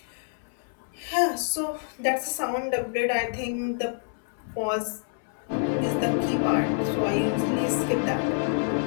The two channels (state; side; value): silent; right; 60 dB below the other